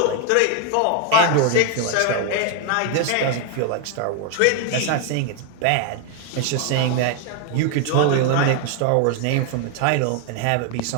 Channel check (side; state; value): both; different; correlation 0.01